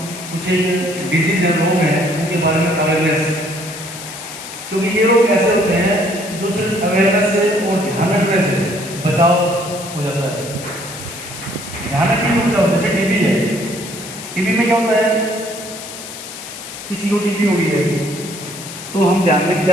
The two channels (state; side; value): noise; left; hiss, 12 dB below the sound